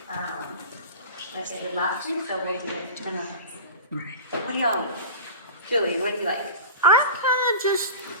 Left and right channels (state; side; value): inverted; both; correlation -0.34